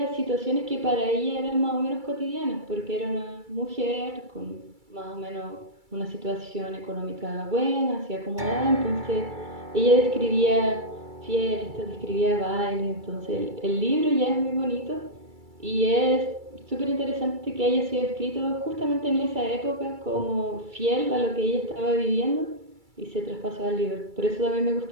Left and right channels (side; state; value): left; late; 2.3 ms